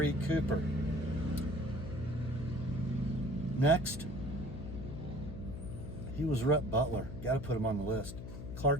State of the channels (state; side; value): noise; left; hum, 9 dB below the sound